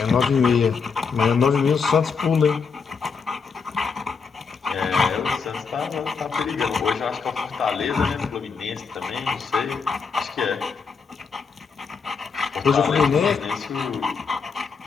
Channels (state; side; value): quieter; right; 5.4 dB